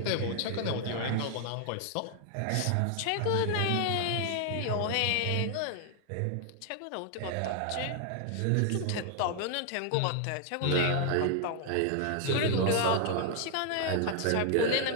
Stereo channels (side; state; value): both; different; correlation 0.00